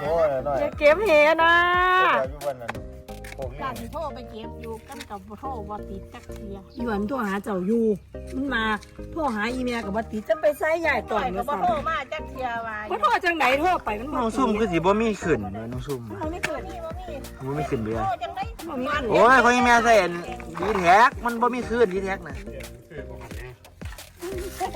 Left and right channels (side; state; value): both; identical; correlation 1.00